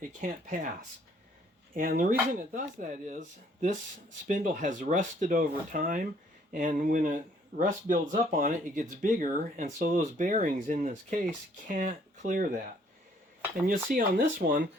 It can't pass. And the reason it does that is this spindle has rusted over time, and when rust builds up on it, it gets bigger, and so those bearings in this case can't clear that. And you'll see on this one,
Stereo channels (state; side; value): normal; both; correlation 0.63